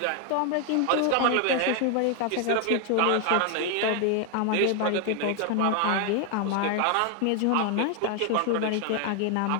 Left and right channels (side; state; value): both; different; correlation 0.01